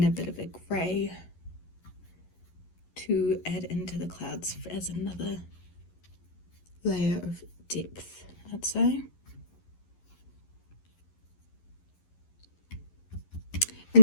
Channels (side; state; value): right; late; 11 ms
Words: a bit of a grey to add into the clouds as another layer of depth, I'd say.